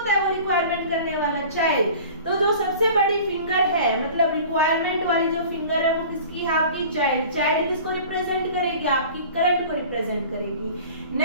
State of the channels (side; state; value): both; inverted; correlation -0.42